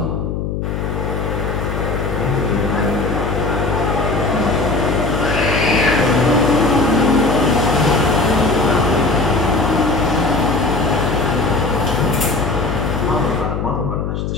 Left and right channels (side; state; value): left; noise; hum, 3 dB below the sound